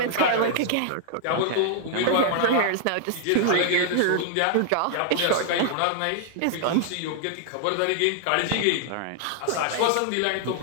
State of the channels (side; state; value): both; different; correlation 0.00